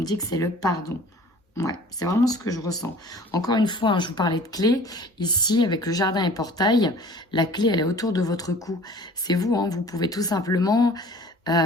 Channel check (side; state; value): both; normal; correlation 0.47